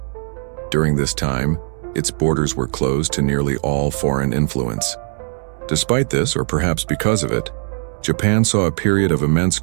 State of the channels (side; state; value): left; silent; 66 dB below the other